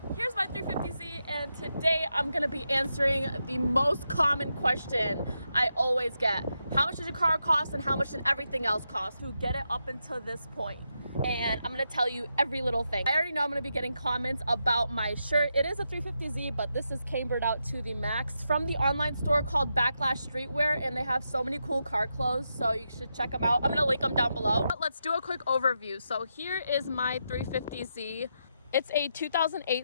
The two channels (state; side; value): inverted; both; correlation -0.85